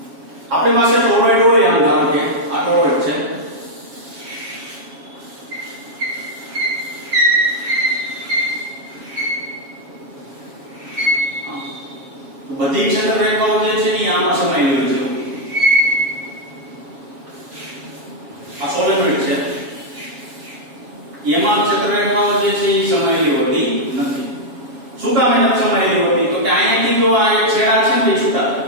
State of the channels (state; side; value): late; left; 7.3 ms